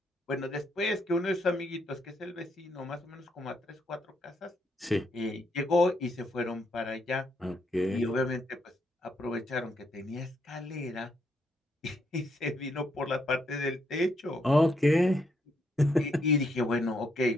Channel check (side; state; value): both; normal; correlation 0.75